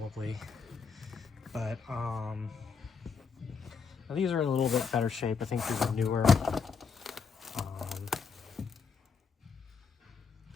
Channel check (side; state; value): right; quieter; 5.5 dB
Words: But these are in a little bit better shape. I think these are newer.